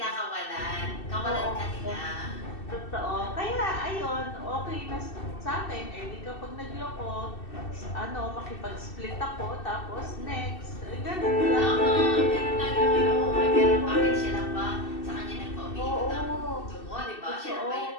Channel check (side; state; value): right; late; 2.6 ms